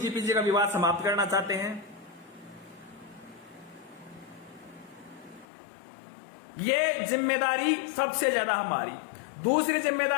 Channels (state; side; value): drops out; right; at 5.5 s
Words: का विवाद समाप्त करना चाहते हैं। ये जिम्मेदारी सबसे ज्यादा हमारी। दूसरी